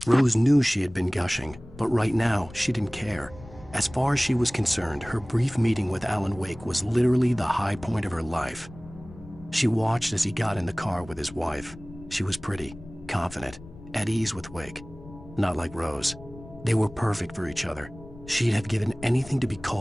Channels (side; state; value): left; noise; rumble, 18 dB below the sound